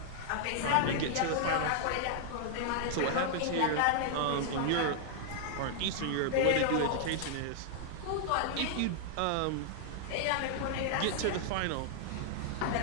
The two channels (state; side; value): different; both; correlation -0.01